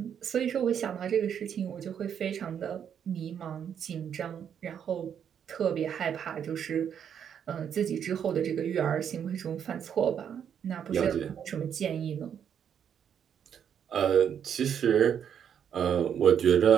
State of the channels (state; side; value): quieter; left; 8.4 dB